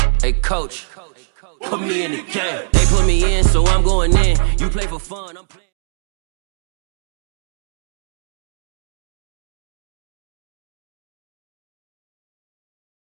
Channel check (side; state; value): left; silent; digital silence